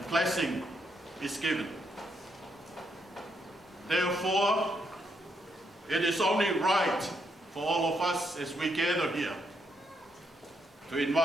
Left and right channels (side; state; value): both; normal; correlation 0.78